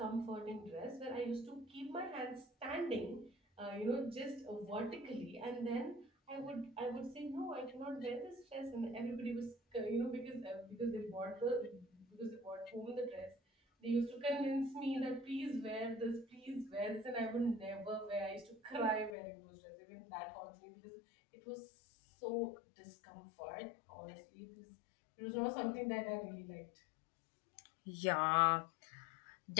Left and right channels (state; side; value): drops out; right; at 19.2 s